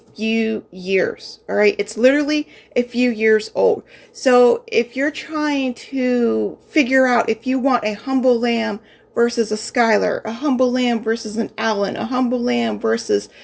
few years, all right? It's literally a few years old. So if you're trying to figure out if you want a Humble Lamb versus a Skylar, a Humble Lamb versus an Allen, a Humble Lamb versus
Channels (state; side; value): identical; both; correlation 1.00